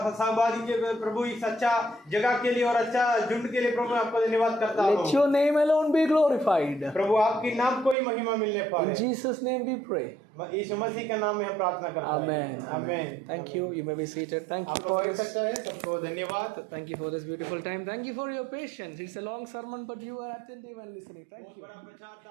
सहभागी के प्रभु इस अच्छा जगह के लिए और अच्छा झुंड के लिए प्रभु आपको धन्यवाद करता हूं। Let your name alone be glorified. प्रभु आपकी नाम को ही महिमा मिलने पाए। In Jesus' name we pray. यीशु मसीह के नाम में हम प्रार्थना करते हैं। Amen. Amen. Thank you. You may be seated. Thank you आप for लोग this. सकते हैं सबको धन्यवाद। Thank you for this beautiful time. Thank you for your patience. It's a long sermon, but you are attentive and listening. Thank बहुत you. बड़ा प्रचार था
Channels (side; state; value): left; drops out; at 8.0 s